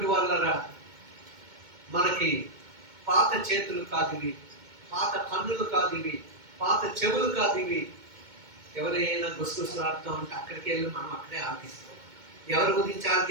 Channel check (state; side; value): late; left; 2.2 ms